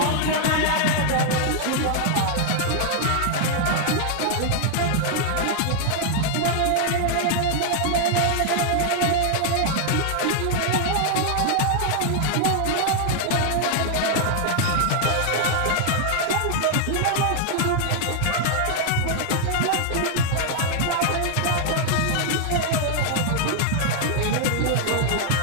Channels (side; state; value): both; different; correlation 0.00